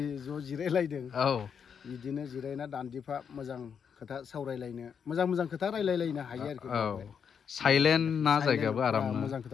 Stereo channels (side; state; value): right; quieter; 7.1 dB